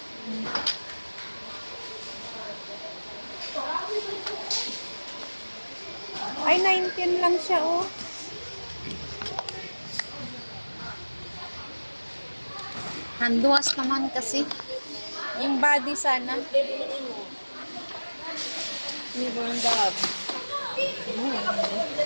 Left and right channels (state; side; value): inverted; both; correlation -1.00